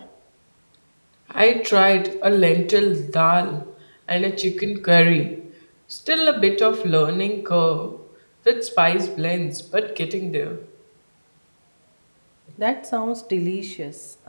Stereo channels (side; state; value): both; inverted; correlation -1.00